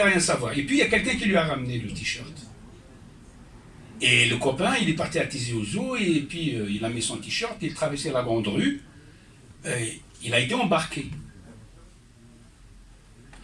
rien savoir. Et puis, il y a quelqu'un qui lui a ramené le t-shirt. Et le copain, il est parti à Tizi Ouzou, et puis il a mis son t-shirt, il traversait la grande rue, il a été embarqué.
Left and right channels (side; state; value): both; identical; correlation 1.00